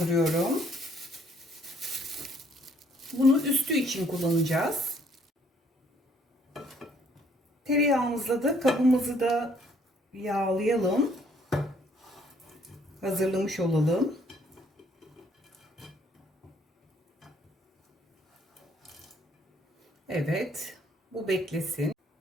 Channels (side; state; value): both; normal; correlation 0.64